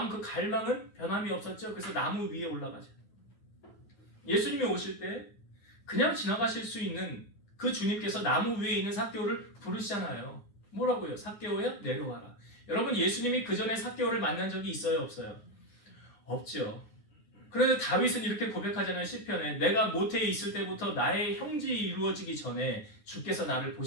그 갈망은 변함이 없었죠. 그래서 나무 위에 올라가죠. 예수님이 오실 때 그냥 지나가실 수 있는 그 주님께서 나무 위에 있는 삭개오를 부르시잖아요. 뭐라고요? 삭개오야 내려와라. 여러분 예수님이 그 전에 삭개오를 만난 적이 있어요? 없어요? 없죠. 그런데 다윗은 이렇게 고백하잖아요. 시편에 내가 모태에 있을 때부터 나의 형질이 이루어지기 전에 주께서 나를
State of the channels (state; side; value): late; right; 9.7 ms